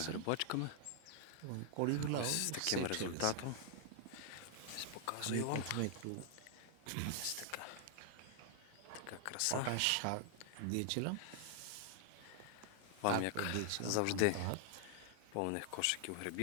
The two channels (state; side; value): different; both; correlation 0.00